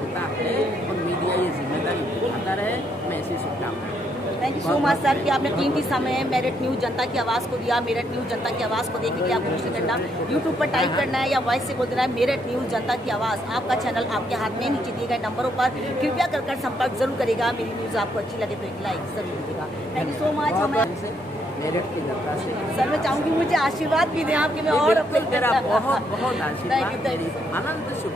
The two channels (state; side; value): normal; both; correlation 0.73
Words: है और मीडिया ये जिम्मेदारी निभाता रहे। मैं ऐसी शुभकामनाएं। Thank you so much sir कि आपने कीमती समय मेरठ न्यूज़ जनता की आवाज़ को दिया। मेरठ न्यूज़ जनता की आवाज़ को देखने के लिए आपको कुछ नहीं करना, यूट्यूब पर टाइप करना है या वॉइस से बोल देना है मेरठ न्यूज़ जनता की आवाज़। आपका चैनल आपके हाथ में, नीचे दिए गए नंबरों पर कृपया कर संपर्क जरूर करेगा। मेरी न्यूज़ आपको अच्छी लगे तो एक लाइक जरूर दीजिएगा। Thank you so much. हमें मेरठ की जनता से सर मैं चाहूँगी मुझे आशीर्वाद भी दें आपके, मैं और अपने तेरा बहुत बहुत आशीर्वाद, मेरी अनंत